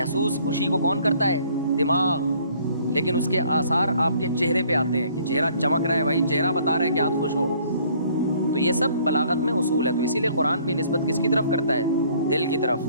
خوشی کو کون کرتا ہے, دماغ. لیکن اس کے آثار آپ کے چہرے پہ آتے ہیں کہ چہرہ چمک رہا ہے, بھائی چہرہ بتا رہا ہے کہ آپ خوش ہو. تو یہ سب بلاغت میں اصول ہے. تو اسی لیے قرآن بھی نسبت کس کی طرف کرتا ہے, دل کی طرف,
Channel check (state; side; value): inverted; both; correlation -0.60